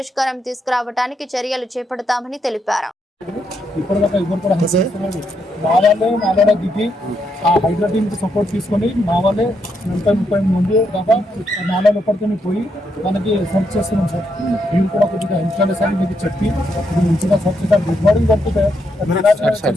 తీసుకురావడానికి చర్యలు చేపడతామని తెలిపారు. ఇప్పటిదాకా ఎవరు కూడా మా వాళ్ళే దిగి ఆ హైడ్రా టీమ్కి సపోర్ట్ తీసుకొని మా వాళ్ళే 30 మంది దాకా నాలుగు ఎప్పటికీ పోయి మనకి సెర్చ్ చేస్తున్నాం సార్. మీరు కూడా కొద్దిగా హెల్ప్ చేయాలి సార్, మీకు చెప్పి ఇది మంచిగా సెర్చ్ చేద్దాం. గుడ్ మార్నింగ్ పడుతుంది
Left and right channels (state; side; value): normal; both; correlation 0.79